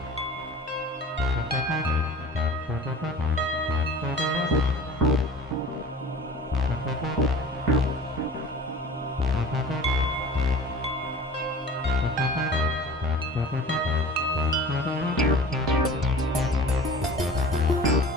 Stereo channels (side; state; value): both; normal; correlation 0.41